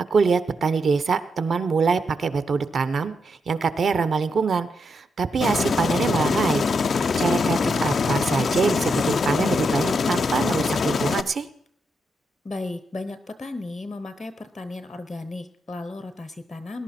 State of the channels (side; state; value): both; normal; correlation 0.82